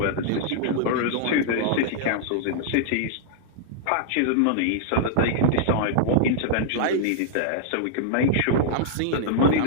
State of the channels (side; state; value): both; different; correlation -0.01